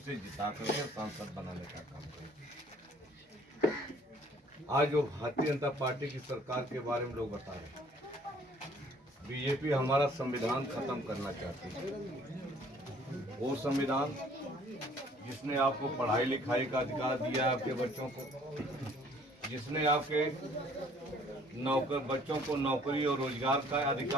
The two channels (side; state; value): both; normal; correlation 0.57